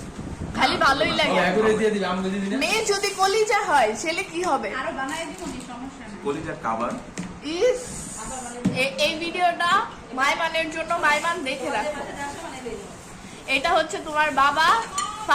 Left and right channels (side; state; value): both; identical; correlation 1.00